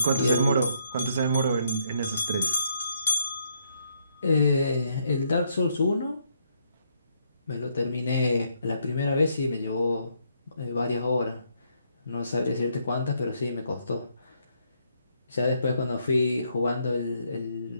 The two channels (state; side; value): inverted; both; correlation -0.73